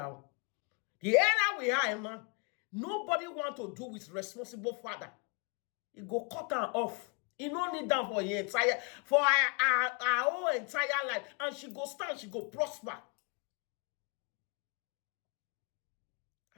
The era we are in now, nobody want to do with responsible father. He go cut her off. He no need that for your entire, for our whole entire life. And she go stand, she go prosper.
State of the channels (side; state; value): right; quieter; 34.1 dB